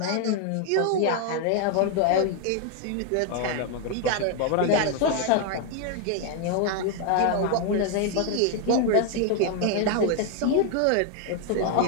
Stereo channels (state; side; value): different; both; correlation 0.00